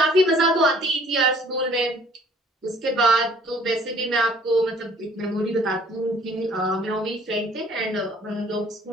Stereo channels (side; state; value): both; normal; correlation 0.56